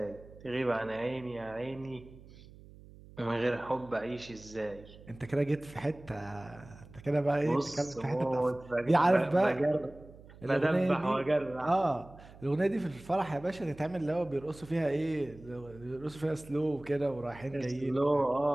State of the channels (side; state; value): right; noise; hum, 20 dB below the sound